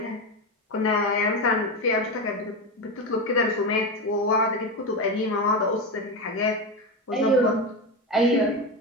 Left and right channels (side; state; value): both; normal; correlation 0.17